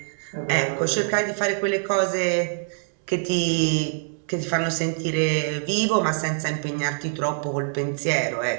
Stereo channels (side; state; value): left; silent; 62 dB below the other